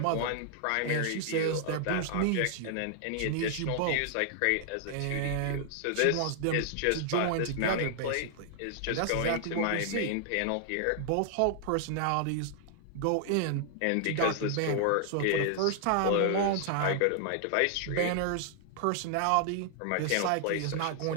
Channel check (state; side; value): different; both; correlation -0.01